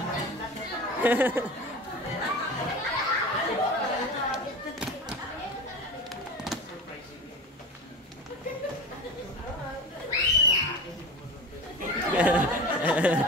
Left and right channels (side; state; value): both; normal; correlation 0.31